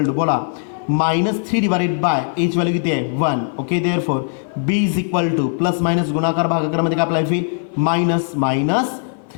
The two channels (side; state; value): right; silent; 57 dB below the other